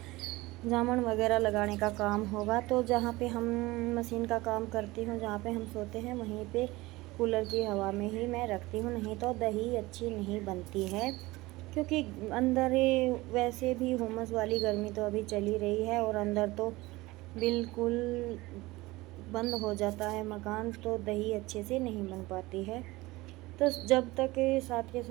जामन वगैरह लगाने का काम होगा। तो जहाँ पे हम मशीन का काम करती हूँ, जहाँ पे हम सोते हैं, वहीं पे कूलर की हवा में ही मैं रखती हूँ, नहीं तो दही अच्छी नहीं बनती है। क्योंकि अंदर वैसे भी हुमस वाली गर्मी तो अभी चली रही है, और अंदर तो बिल्कुल बंद हो जाता है मकान, तो दही अच्छे से नहीं बन पाती है। तो जब तक साथ के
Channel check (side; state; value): left; quieter; 20.4 dB